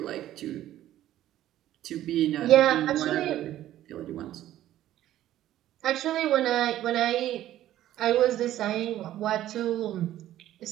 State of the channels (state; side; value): quieter; left; 13.2 dB